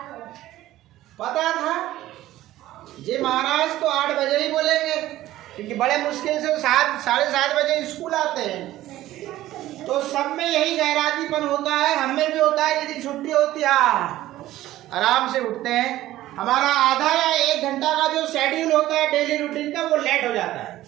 पता था जी महाराज तो 8 बजे ही बोलेंगे, क्योंकि बड़े मुश्किल से 7 7:30 बजे स्कूल आते हैं, तो सब में यही गैरातीपन होता है, हम में भी होता है। यदि छुट्टी होती है आराम से उठते हैं, हमारा आधा या 1 घंटा का जो शेड्यूल होता है डेली रूटीन का, वो लेट हो जाता है,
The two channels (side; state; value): left; quieter; 14.9 dB